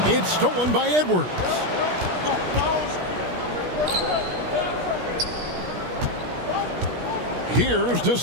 It's stolen by Edwards. Here's De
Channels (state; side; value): late; left; 17 ms